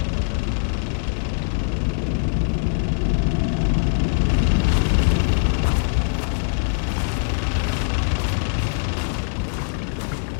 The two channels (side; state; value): right; silent; digital silence